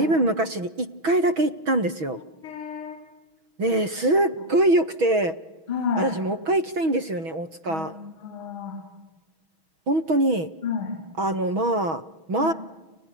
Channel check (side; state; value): left; late; 6.2 ms